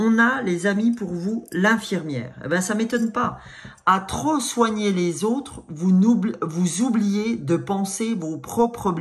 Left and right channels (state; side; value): identical; both; correlation 1.00